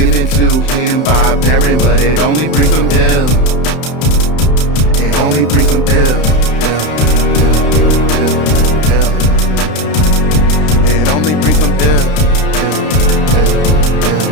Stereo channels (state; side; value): late; right; 32 ms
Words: to him by Beren, but it only brings him ill. It only brings him ill. It only brings him ill.